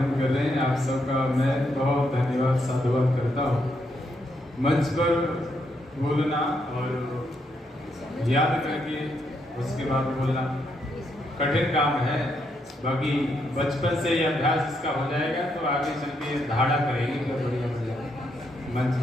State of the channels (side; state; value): both; normal; correlation 0.78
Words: कर रहे हैं, आप सबका मैं बहुत धन्यवाद साधुवाद करता हूँ। मंच पर बोलना और याद करके उसके बाद बोलना कठिन काम है, बाकी बचपन से ये अभ्यास इसका हो जाएगा तो आगे चल के धाड़ा करेगी तो बढ़िया हो जाएगा। मंच